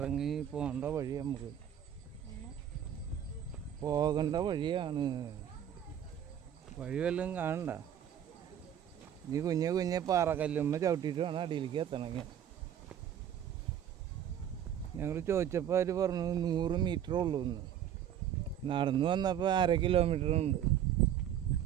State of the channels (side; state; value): left; quieter; 10.0 dB